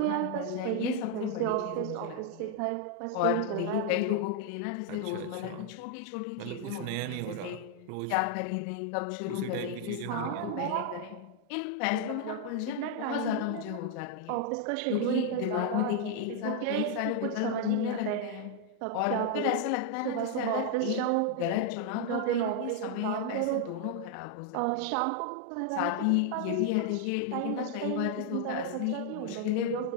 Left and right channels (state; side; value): different; both; correlation 0.00